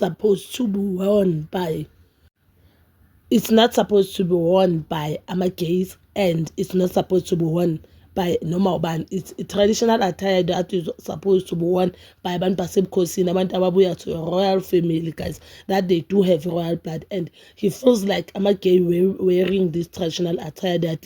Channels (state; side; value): identical; both; correlation 1.00